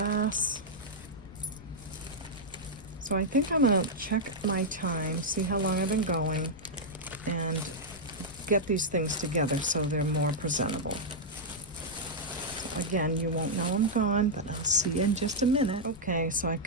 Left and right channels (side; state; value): left; noise; rumble, 18 dB below the sound